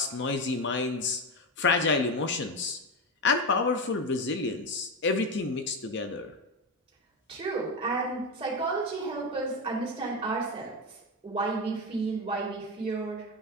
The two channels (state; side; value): normal; both; correlation 0.15